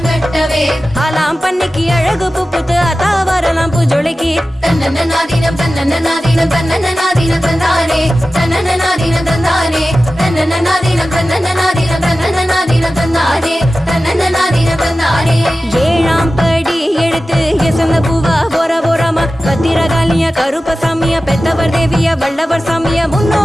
ஆலாம் பண்ணைக்கு அழகு பூப்புத்து அத்தாவராலாம் பூஞ்சோலைக்கு தன்னன்னாதீனம் தன்னன்னாதீனம் தன்னன்னாதீனம் தந்தானே தன்னன்னாதீனம் தந்தானே தன்னன்னாதீனம் தன்னன்னாதீனம் தன்னன்னாதீனம் தந்தானே தன்னன்னாதீனம் தந்தானே ஏழாம் படி எடுத்து எசந்த பூவா ஓரமா பத்திரகாளிய கருப்பசாமிய பெத்தவர் தேவிய வல்லவர் சாமிய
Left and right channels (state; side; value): normal; both; correlation 0.95